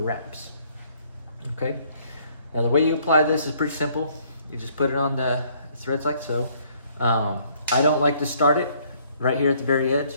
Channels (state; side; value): inverted; both; correlation -0.64